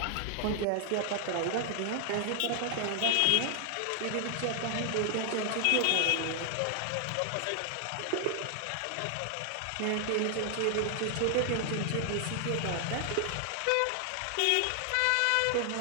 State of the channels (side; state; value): both; different; correlation 0.00